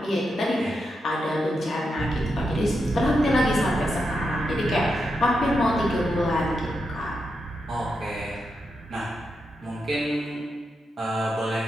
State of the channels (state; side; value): normal; both; correlation 0.85